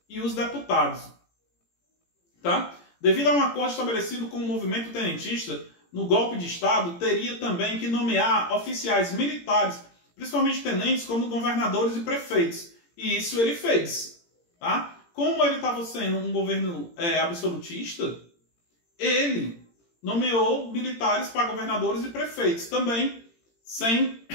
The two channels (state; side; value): late; right; 17 ms